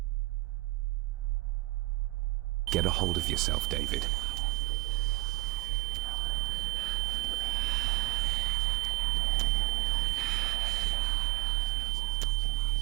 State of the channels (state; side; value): quieter; left; 19.0 dB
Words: Get a hold of yourself, David.